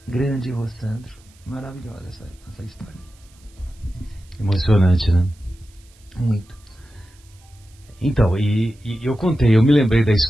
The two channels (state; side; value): noise; right; hiss, 30 dB below the sound